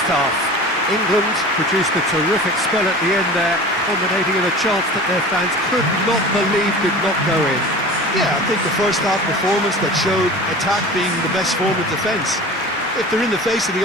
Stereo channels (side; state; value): both; normal; correlation 0.37